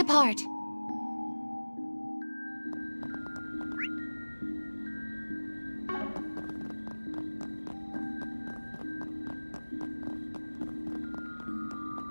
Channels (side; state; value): both; inverted; correlation -1.00